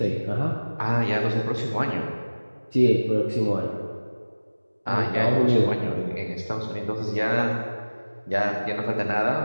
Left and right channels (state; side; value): inverted; both; correlation -1.00